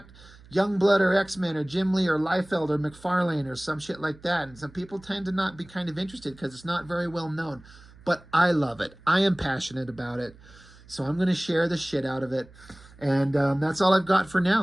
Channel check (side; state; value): right; noise; hum, 23 dB below the sound